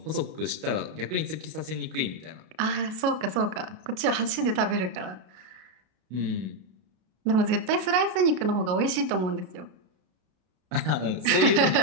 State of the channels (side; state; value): left; late; 33 ms